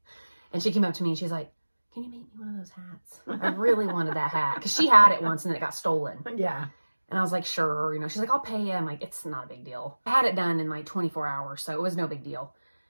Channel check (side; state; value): both; inverted; correlation -1.00